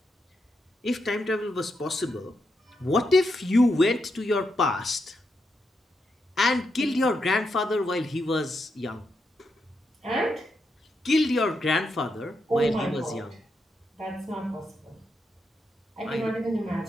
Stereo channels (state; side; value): normal; both; correlation 0.83